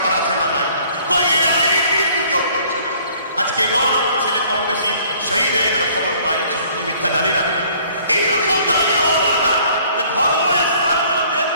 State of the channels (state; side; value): inverted; both; correlation -0.56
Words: আছে না? নাই? এই আইন কিন্তু কেউ করছে না। আজকে 9 ছেলে কম বেশি শহীদ হয়ে গেল, খবর পাওয়া যাচ্ছে, সত্য মিথ্যা জানি না। এইরকম দাঁড়ি হওয়া দরকার যে ধর্ম স্থানগুলোতে